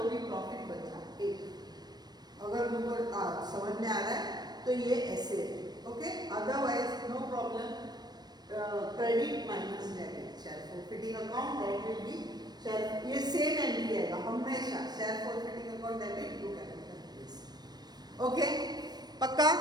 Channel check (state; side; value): late; left; 0.19 ms